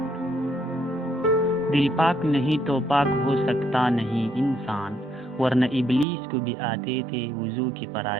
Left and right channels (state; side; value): drops out; left; at 6.1 s